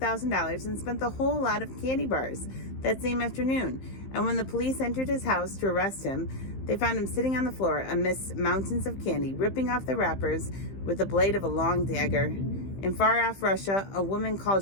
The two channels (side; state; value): right; late; 15 ms